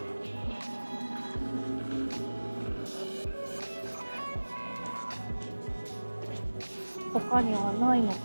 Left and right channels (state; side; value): inverted; both; correlation -1.00